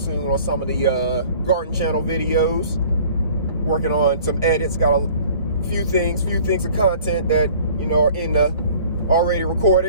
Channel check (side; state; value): both; inverted; correlation -0.50